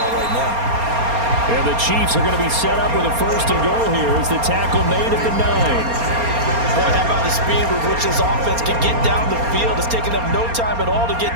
right now. And the Chiefs are going to be set up with a first and goal here as the tackle made at the 9. Boy, how about the speed with which this offense can get down the field? It's taking them no time at all to get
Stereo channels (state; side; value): late; left; 4.3 ms